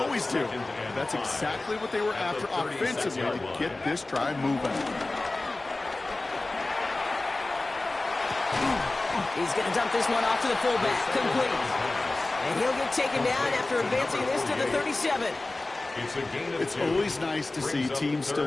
do. That's exactly what they were after offensively to get this drive moving. He's going to dump this one off to the fullback. Complete. And he'll get taken down after advancing this to the 37. It's always nice to see teams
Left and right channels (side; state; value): right; quieter; 3.0 dB